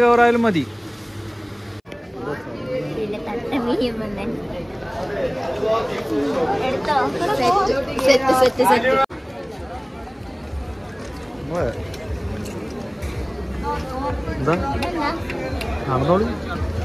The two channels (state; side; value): identical; both; correlation 1.00